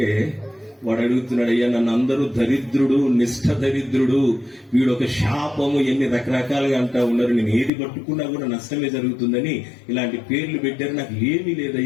వాడు అడుగుతున్నాడు, అయ్యా నన్ను అందరూ దరిద్రుడు, నిష్ఠ దరిద్రుడు, వీడు ఒక శాపము, ఎన్ని రకరకాలుగా అంటా ఉన్నారు, నేను ఏది పట్టుకున్నా కూడా నష్టమే జరుగుతుందని ఇలాంటి పేర్లు పెట్టారు, నాకు ఏమీ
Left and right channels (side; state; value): right; drops out; at 7.7 s